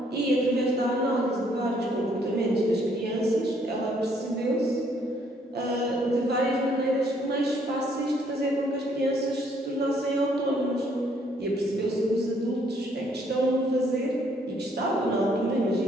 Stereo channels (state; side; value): normal; both; correlation 0.67